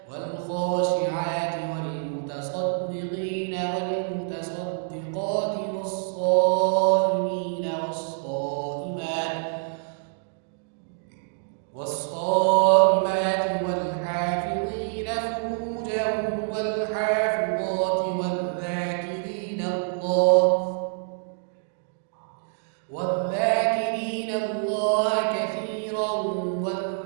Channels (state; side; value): silent; left; 61 dB below the other